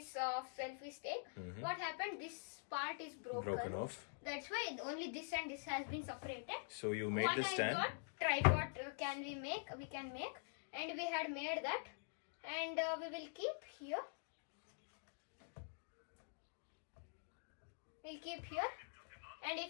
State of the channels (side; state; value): right; silent; digital silence